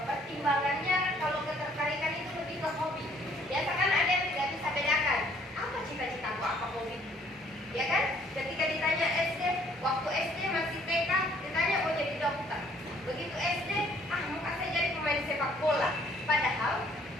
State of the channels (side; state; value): both; normal; correlation 0.61